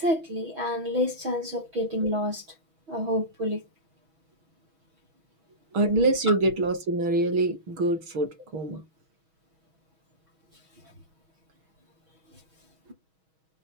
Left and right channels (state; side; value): late; left; 6.3 ms